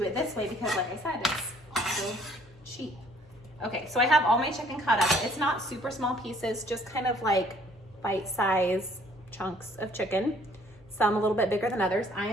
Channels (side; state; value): both; normal; correlation 0.60